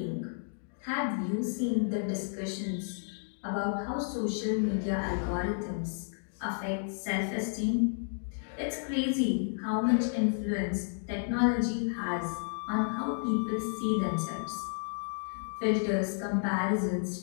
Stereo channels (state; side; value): silent; right; digital silence